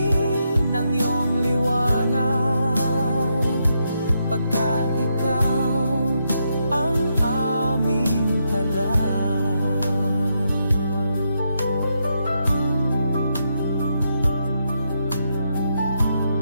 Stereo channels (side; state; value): both; inverted; correlation -0.81